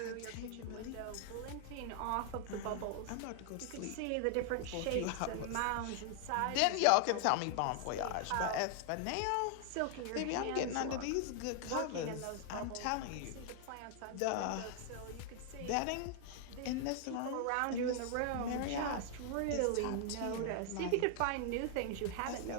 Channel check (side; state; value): both; different; correlation 0.00